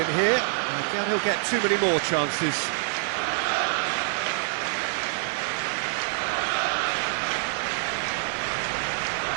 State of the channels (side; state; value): left; silent; 55 dB below the other